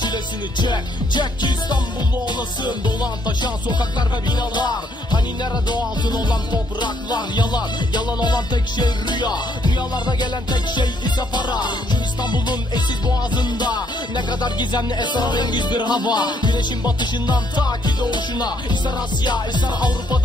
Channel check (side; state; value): both; normal; correlation 0.70